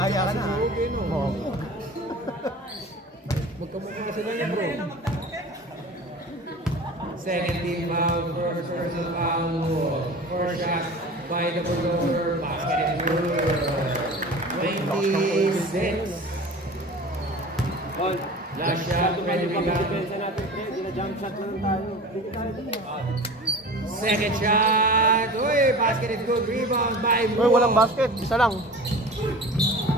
ka na. Moog. Magkamukha sila niya, bro. Second team foul. First personal foul. First shot by the Bulldozer. Basket is good. 26. Last shot, ready rebound. Second shot. Uy, basket is good. Rebound by Uy, walang basket. Isa lang.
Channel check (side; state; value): both; normal; correlation 0.37